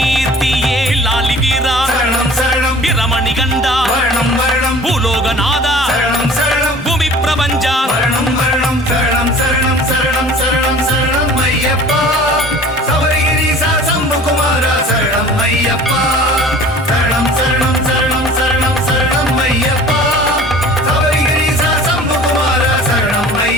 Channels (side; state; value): both; normal; correlation 0.46